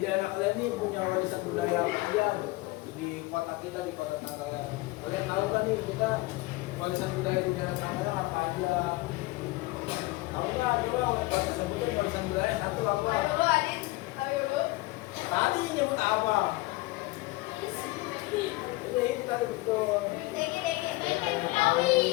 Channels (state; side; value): quieter; right; 21.6 dB